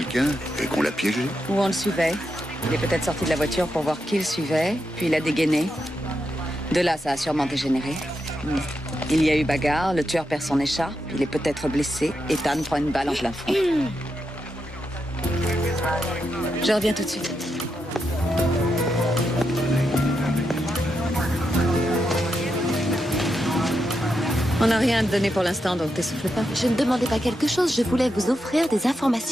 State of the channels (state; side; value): normal; both; correlation 0.85